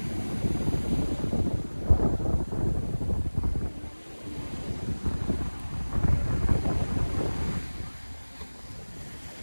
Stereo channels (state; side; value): inverted; both; correlation -1.00